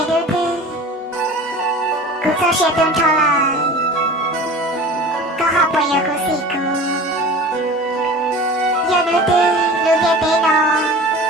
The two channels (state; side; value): normal; both; correlation 0.38